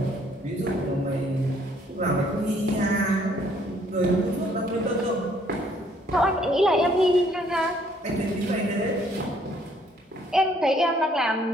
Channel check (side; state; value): both; normal; correlation 0.64